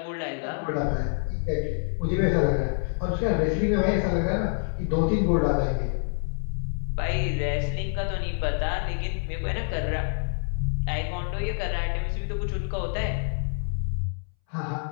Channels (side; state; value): right; silent; 60 dB below the other